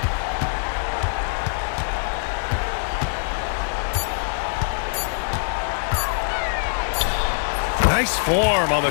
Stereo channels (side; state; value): right; silent; 62 dB below the other